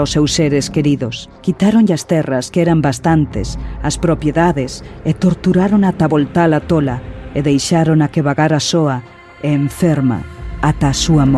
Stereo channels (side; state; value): both; identical; correlation 1.00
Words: os seus seres queridos. Quitaronlle as terras, que eran bastantes, as propiedades, e torturaron ata voltala tola, e deixaron a que vagara soa e enferma ata a súa